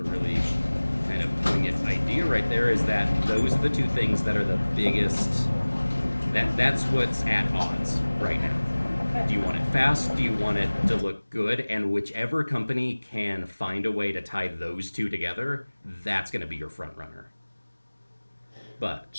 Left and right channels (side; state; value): both; inverted; correlation -1.00